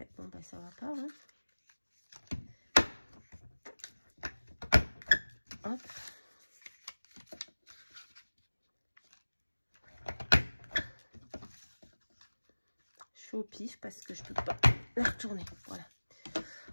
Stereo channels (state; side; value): inverted; both; correlation -1.00